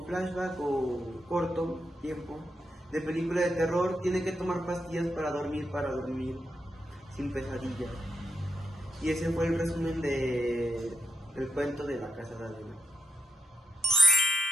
flashback o corto tiempo de película de terror, tiene que tomar pastillas para dormir sin pesadillas. Y ese fue el resumen del cuento de la casa de Adela.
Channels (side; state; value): both; normal; correlation 0.82